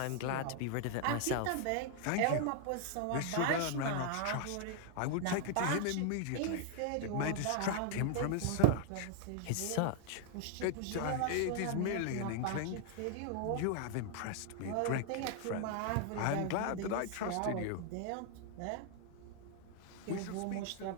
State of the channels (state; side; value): different; both; correlation 0.00